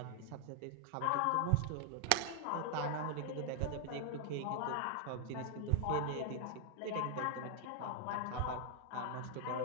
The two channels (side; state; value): both; different; correlation 0.00